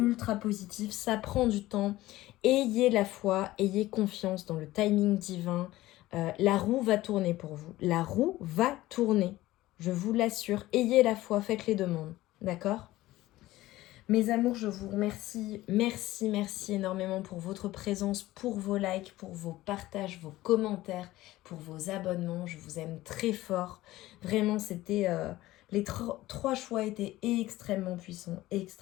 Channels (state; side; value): quieter; right; 16.9 dB